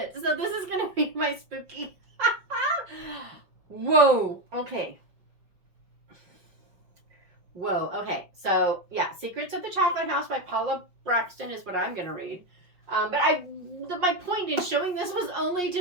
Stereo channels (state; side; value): late; left; 5.6 ms